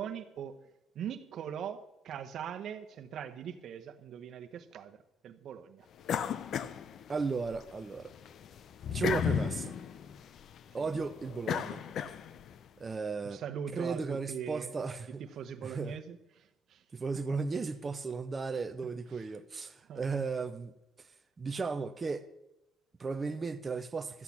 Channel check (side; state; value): both; normal; correlation 0.75